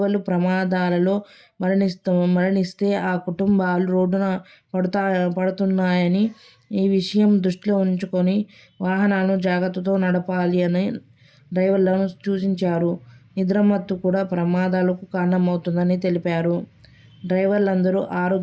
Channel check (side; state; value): both; identical; correlation 1.00